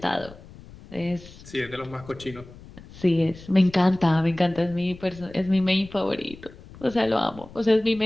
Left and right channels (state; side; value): noise; left; rumble, 19 dB below the sound